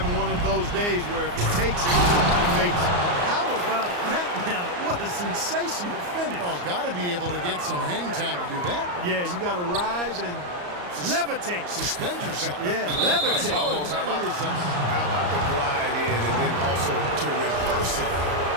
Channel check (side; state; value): left; late; 34 ms